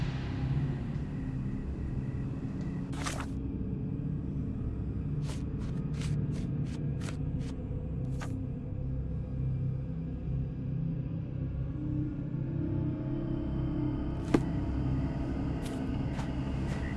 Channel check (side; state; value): both; identical; correlation 1.00